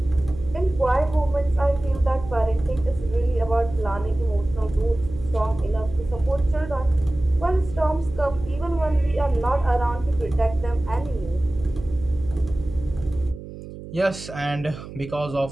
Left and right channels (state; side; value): noise; right; hum, 13 dB below the sound